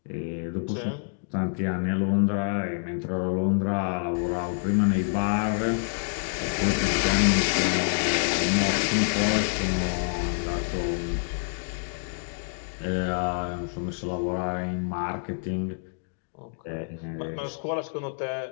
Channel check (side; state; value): right; silent; digital silence